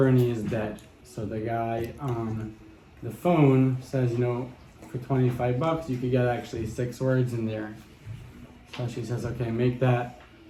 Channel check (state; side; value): identical; both; correlation 1.00